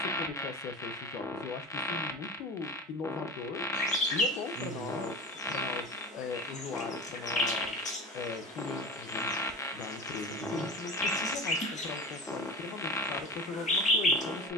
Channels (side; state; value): both; normal; correlation 0.34